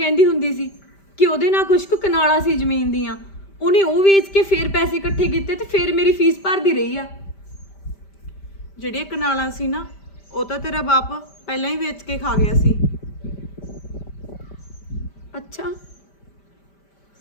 ਹੁੰਦੀ ਸੀ ਕਿ ਉਹਦੇ ਨਾਲ ਕੁਝ ਕੁ ਕਨਾਲਾਂ ਸੀ ਜ਼ਮੀਨ ਦੀਆਂ, ਉਹਨੇ ਉਹ ਵੇਚ ਕੇ ਫੇਰ ਪੈਸੇ ਇਕੱਠੇ ਕੀਤੇ ਤੇ ਫੇਰ ਮੇਰੀ ਫੀਸ ਭਰਦੀ ਰਹੀ ਆ। ਜਿਹੜੀਆਂ ਕਨਾਲਾਂ ਸੀ ਨਾ, ਉਹ ਤਾਂ ਤੇਰਾ ਬਾਪ ਪਹਿਲਾਂ ਹੀ ਵੇਚ ਕੇ ਖਾ ਗਿਆ ਸੀ। ਅੱਛਾ,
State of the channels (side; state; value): right; late; 5.1 ms